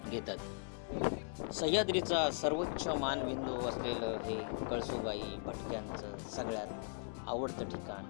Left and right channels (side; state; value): right; silent; digital silence